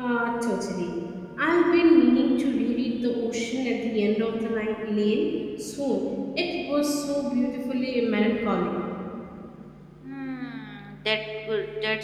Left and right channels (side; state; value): both; identical; correlation 1.00